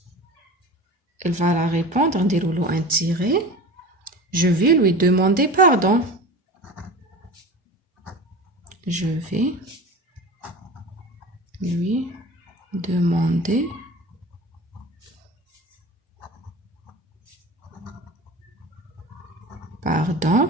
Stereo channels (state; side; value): normal; both; correlation 0.34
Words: Elle va la répondre, نديرولو un tiré. Je vais lui demander pardon. Je vais lui demander